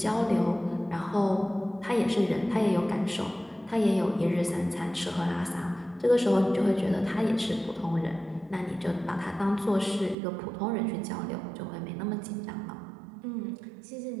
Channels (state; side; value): drops out; left; at 10.2 s